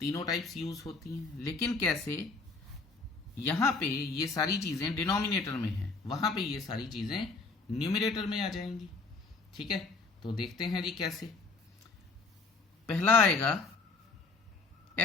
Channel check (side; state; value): right; quieter; 4.1 dB